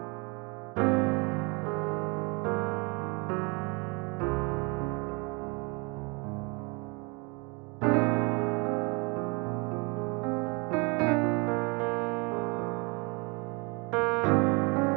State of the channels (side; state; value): left; quieter; 29.8 dB